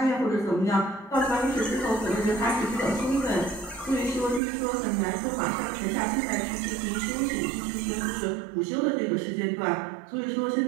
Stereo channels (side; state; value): left; drops out; at 4.4 s